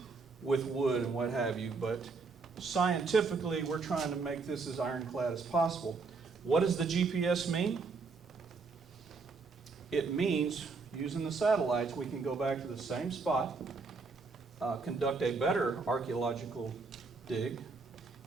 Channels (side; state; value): left; quieter; 4.4 dB